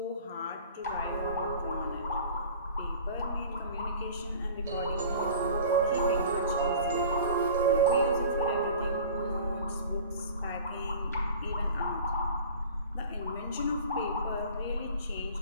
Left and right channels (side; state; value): both; inverted; correlation -0.43